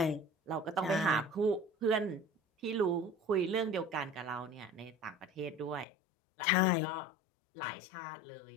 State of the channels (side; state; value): right; drops out; at 5.9 s